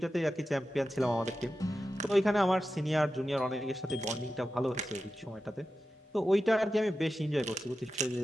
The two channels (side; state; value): both; normal; correlation 0.92